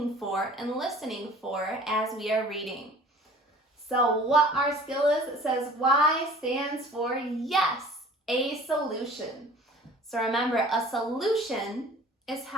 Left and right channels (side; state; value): both; normal; correlation 0.48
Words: for and listening for as we are reading. So what our skill is, it says Y stands for yes, a solution. So remember, a solution is